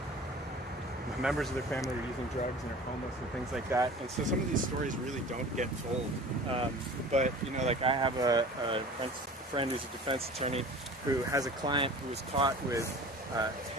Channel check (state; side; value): normal; both; correlation 0.41